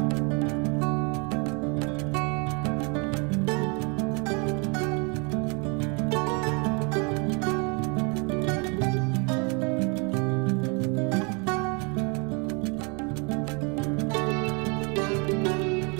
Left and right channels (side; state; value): left; quieter; 32.9 dB